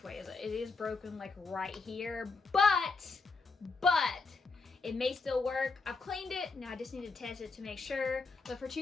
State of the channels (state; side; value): quieter; right; 4.2 dB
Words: way is it? It is broken like right here, but it may still work. I've cleaned it. Now I just need to test it to make sure. But for